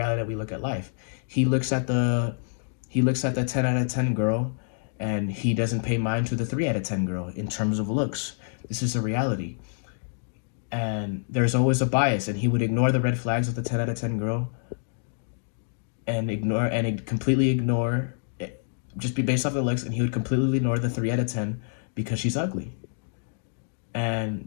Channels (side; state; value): right; silent; digital silence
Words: that we look at life. He looks at the 10 out of 10 girl, and he doesn't pay mind to the 3 out of 10 girl in terms of looks. This is a reality. And there's always a bias, and he would ignore the red flags of the 10 out of 10 girl and completely ignore it, just be based off the looks, and he would completely ignore the 3 out of 10 because she's ugly. And